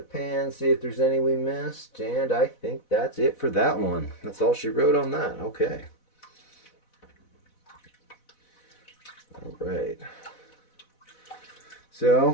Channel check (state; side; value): late; right; 4.0 ms